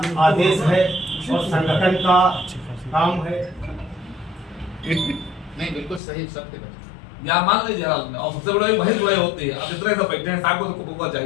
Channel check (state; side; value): drops out; right; at 6.0 s